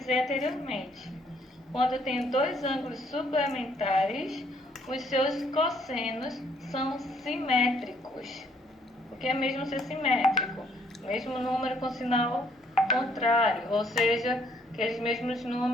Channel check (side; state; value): both; normal; correlation 0.66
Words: anteriormente. Quando eu tenho dois ângulos suplementares, os seus cossenos são simétricos. O que é mesmo ser simétrico? Mesmo número com sinal contrário, ou seja, aqueles mesmos